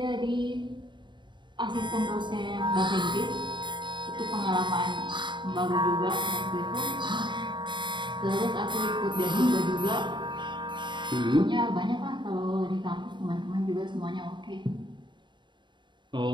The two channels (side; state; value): left; late; 0.23 ms